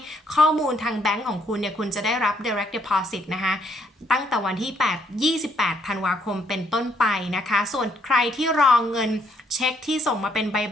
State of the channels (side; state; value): both; normal; correlation 0.70